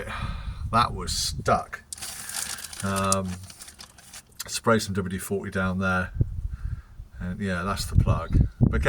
That was stuck. Spray some WD-40 down there, and yeah, that's the plug.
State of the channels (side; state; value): both; identical; correlation 1.00